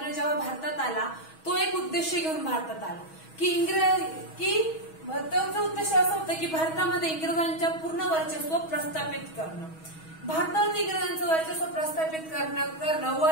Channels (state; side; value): late; right; 6.3 ms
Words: जेव्हा भारतात आला तो एक उद्देश घेऊन भारतात आला की त्याचा उद्देश असा होता की भारतामध्ये इंग्रजांच्या पूर्ण वर्चस्व प्रस्थापित करणं. भारतात इंग्रजांचं वर्चस्व प्रस्थापित करणं व